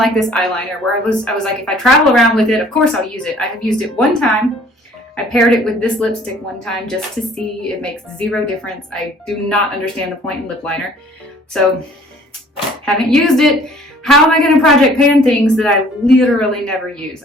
this eyeliner, where I was like, if I travel around with it, of course I'll use it. I have used it one time. I paired it with this lipstick one time just to see. It makes 0 difference. I do not understand the point in lip liner. So, haven't used it. How am I going to project pan things that I literally never use?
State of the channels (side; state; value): both; normal; correlation 0.55